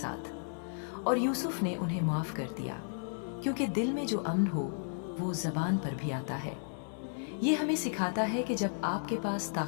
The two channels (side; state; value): right; silent; 55 dB below the other